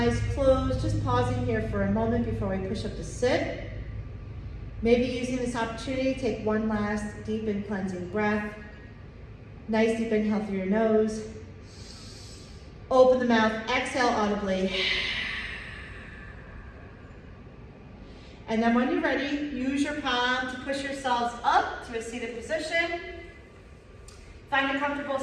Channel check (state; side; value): identical; both; correlation 1.00